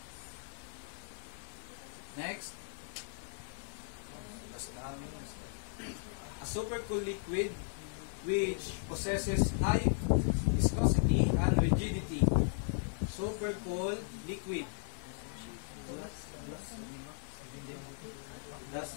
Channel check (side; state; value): right; silent; digital silence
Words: Next, a super cool liquid which possesses high viscosity and rigidity. Super cool liquid. That